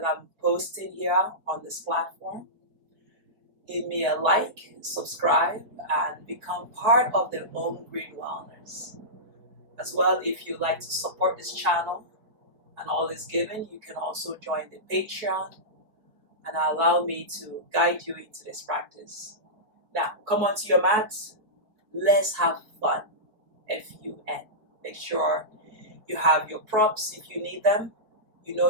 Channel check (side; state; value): left; late; 4.7 ms